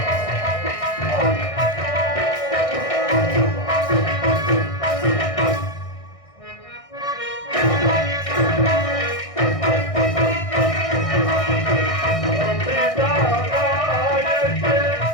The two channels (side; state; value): right; late; 1.6 ms